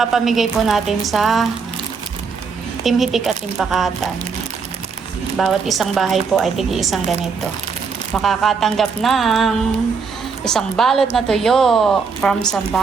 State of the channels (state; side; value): quieter; left; 5.3 dB